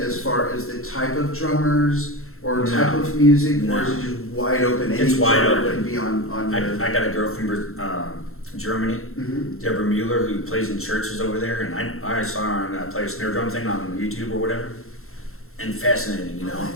as far as the type of drummers or No. type of music, No. or is it just wide open? Any It's wide drummer open. can be on your. I got a girl from Germany, Mhm. Deborah Mueller, who plays in churches over there, and I saw her on play a snare drum thing on YouTube or whatever, and fascinating, you know, Oh,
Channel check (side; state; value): right; late; 0.62 ms